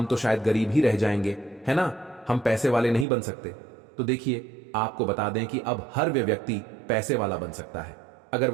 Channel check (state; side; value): drops out; left; at 3.1 s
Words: तो शायद गरीब ही रह जाएंगे, है ना, हम पैसे वाले नहीं बन सकते। तो देखिए, आपको बता दें कि अब हर व्यक्ति पैसे वाला बन सकता है। अगर